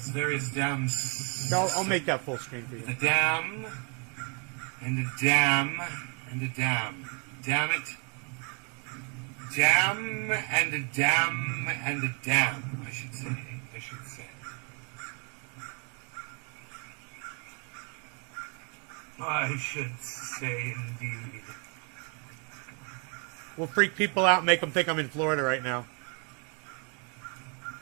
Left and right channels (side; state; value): left; quieter; 37.0 dB